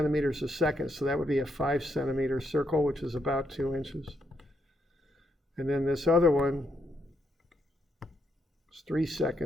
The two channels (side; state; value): both; normal; correlation 0.77